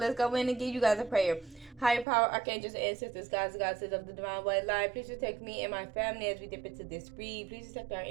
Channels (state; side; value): drops out; left; at 2.1 s